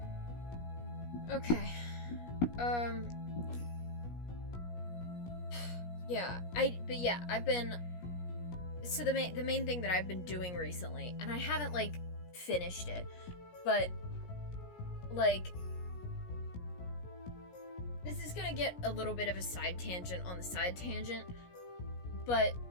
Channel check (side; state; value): right; late; 17 ms